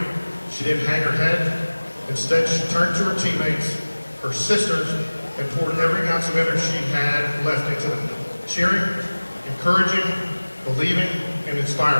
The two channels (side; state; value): both; inverted; correlation -1.00